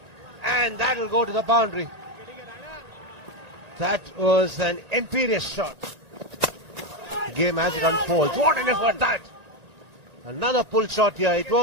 and that'll go to the boundary. That was an imperious shot. The game as it unfolds. What an effort that! Another pull shot here. It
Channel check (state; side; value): late; left; 1.6 ms